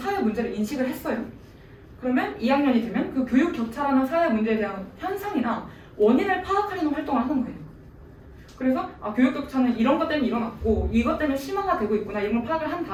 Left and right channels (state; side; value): identical; both; correlation 1.00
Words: 문제를 인식을 했어요. 그러면 2학년이 되면 그 교육 격차라는 사회 문제에 대한 현상이나 원인을 파악하려는 활동을 하는 거예요. 그래서 교육 격차는 이런 것 때문에 일어났고 이것 때문에 심화가 되고 있구나 이런 걸 파악을 한